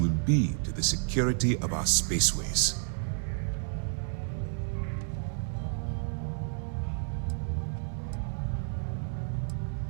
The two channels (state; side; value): silent; left; 57 dB below the other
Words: will be to the security of our spaceways.